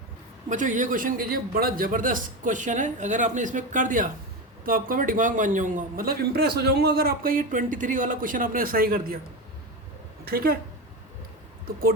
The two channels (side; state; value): both; normal; correlation 0.19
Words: बच्चों ये क्वेश्चन कीजिए, बड़ा ज़बरदस्त क्वेश्चन है। अगर आपने इसमें कर दिया तो आपका मैं दिमाग मान जाऊँगा, मतलब इम्प्रेस हो जाऊँगा अगर आपका ये 23 वाला क्वेश्चन आपने सही कर दिया। ठीक है, तो